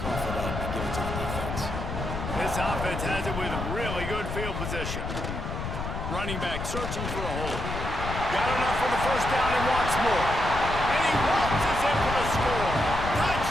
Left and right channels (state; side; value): noise; left; rumble, 5 dB below the sound